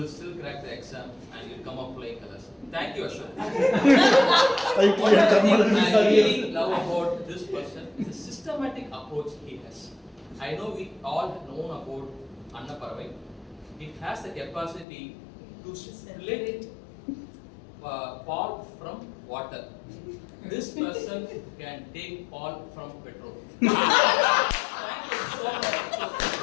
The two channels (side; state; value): right; drops out; at 14.9 s